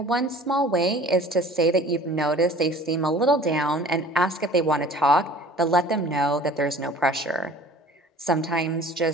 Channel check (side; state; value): both; normal; correlation 0.47